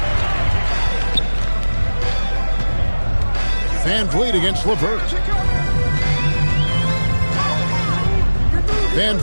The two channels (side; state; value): both; inverted; correlation -1.00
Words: Van Vliet against LeVert. Van